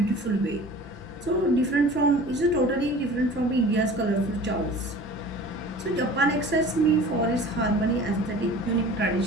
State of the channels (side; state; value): both; normal; correlation 0.42